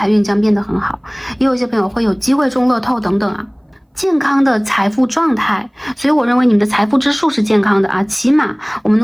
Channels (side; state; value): both; identical; correlation 1.00